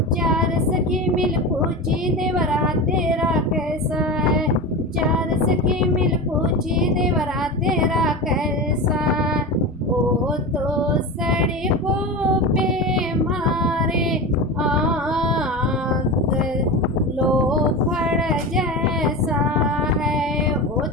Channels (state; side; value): normal; both; correlation 0.25